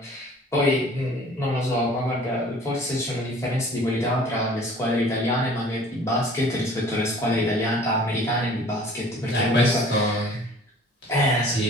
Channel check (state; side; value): normal; both; correlation 0.49